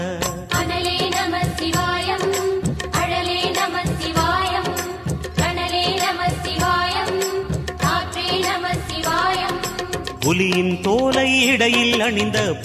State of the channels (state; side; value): identical; both; correlation 1.00